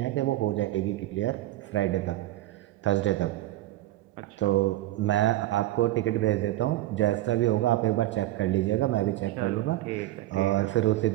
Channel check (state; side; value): quieter; left; 15.7 dB